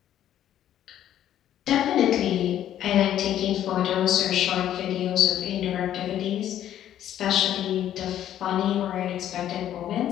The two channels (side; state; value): right; quieter; 11.3 dB